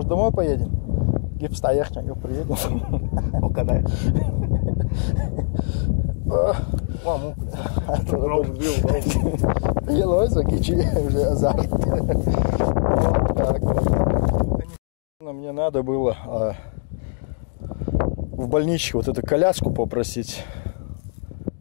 домой поедем? Гипс наехать, как он приедет. Вот так вот. Мне надо было в больничке вот эту коляску попросить.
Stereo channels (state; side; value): silent; right; digital silence